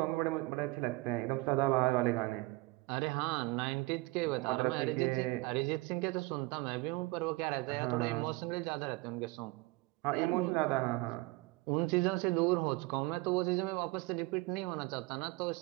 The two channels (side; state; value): left; quieter; 23.2 dB